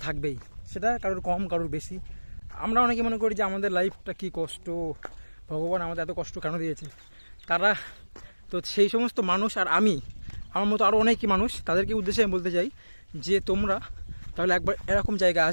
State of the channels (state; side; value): inverted; both; correlation -1.00